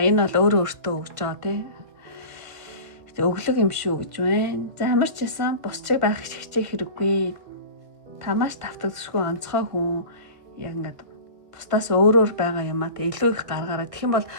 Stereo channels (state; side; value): late; left; 1.5 ms